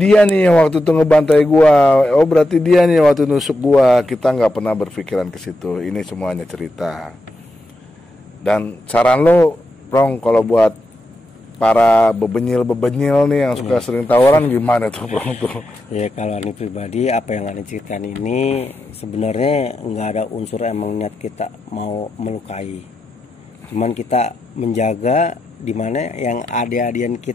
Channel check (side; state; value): both; normal; correlation 0.86